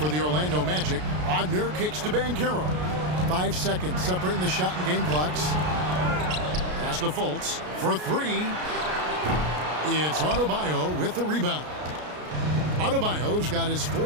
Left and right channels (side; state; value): left; late; 33 ms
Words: the Orlando Magic. Wagner kicks to Banchero. 5 seconds separating the shot and game clocks. Pass to Fultz for three. It's Adebayo with the rebound. Adebayo's got his